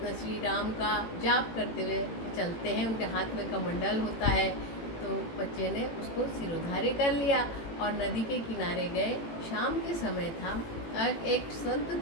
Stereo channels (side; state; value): right; late; 18 ms